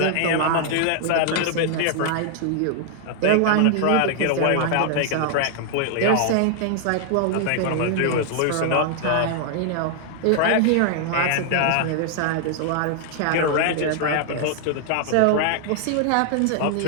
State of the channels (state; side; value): different; both; correlation -0.01